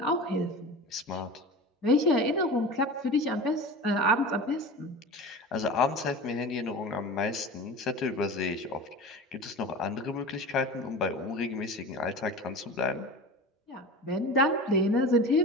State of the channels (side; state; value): both; normal; correlation 0.32